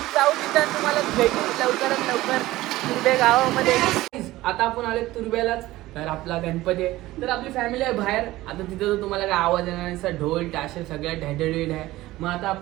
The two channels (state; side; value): quieter; left; 17.2 dB